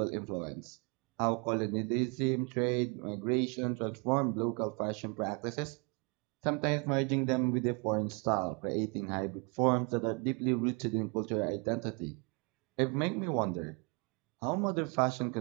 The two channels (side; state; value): left; quieter; 32.7 dB